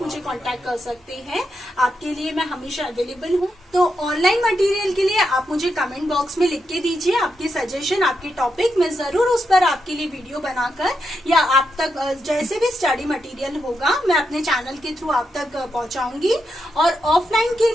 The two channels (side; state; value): both; normal; correlation 0.84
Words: मुझे कॉन्टेक्ट कर सकते हैं, आपके लिए मैं हमेशा अवेलेबल हूँ। तो ऑनलाइन मटेरियल के लिए आप मुझे कमेंट बॉक्स में लिख के दीजिए आपके सजेशन, आपके टॉपिक, मैं जरूर उस पर आपके लिए वीडियो बनाकर या आप तक जैसे भी स्टडी मटेरियल होगा मैं अपने चैनल के थ्रू आप तक पहुंचाऊंगी। और ऑफलाइन के